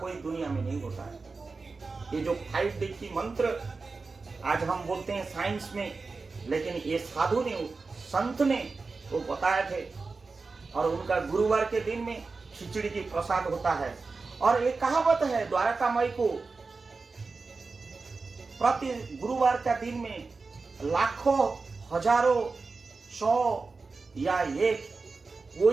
दुनिया में नहीं होता है। ये जो 5D की मंत्र आज हम बोलते हैं साइंस में, लेकिन ये साधु ने, संत ने वो बताए थे। और उनका गुरुवार के दिन में खिचड़ी की प्रसाद होता है। और ये कहावत है, द्वारका माई को प्रति गुरुवार का दिन में लाखों, हजारों, 100 या 1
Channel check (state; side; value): quieter; left; 4.1 dB